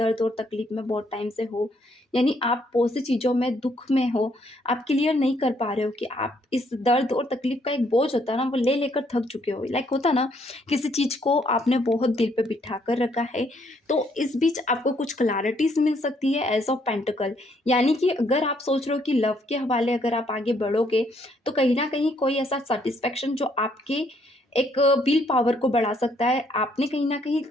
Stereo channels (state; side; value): normal; both; correlation 0.69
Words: और तकलीफ में बहुत टाइम से हो, यानी आप बहुत सी चीज़ों में दुःख में हो, आप क्लियर नहीं कर पा रहे हो कि आप इस दर्द और तकलीफ़ का एक बोझ होता है ना, वो ले लेकर थक चुके हो। लाइक होता है ना, किसी चीज़ को आपने बहुत दिल पे बिठा कर रखा है, तो इस बीच आपको कुछ क्लैरिटीज़ मिल सकती है एज़ ऑफ पेंटिकल। यानी कि अगर आप सोच रहे हो कि लव के हवाले अगर आप आगे बढ़ोगे, तो कहीं न कहीं कोई ऐसा सैटिस्फैक्शन जो आपके एक विल पावर को बढ़ा सकता है। आपने कहीं न कहीं